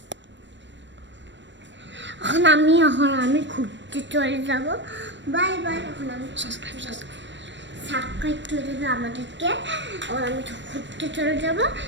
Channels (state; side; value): late; left; 0.53 ms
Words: এখন আমি ঘুরতে চলে যাব। Bye bye. এখন আমি সাবস্ক্রাইব করে দেবে আমাদেরকে। এখন আমি ঘুরতে চলে যাব।